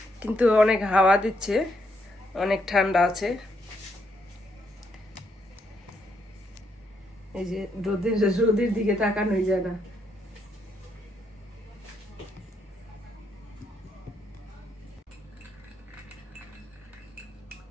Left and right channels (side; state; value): both; normal; correlation 0.76